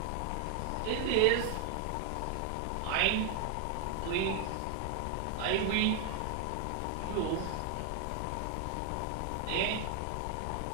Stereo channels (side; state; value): both; different; correlation 0.00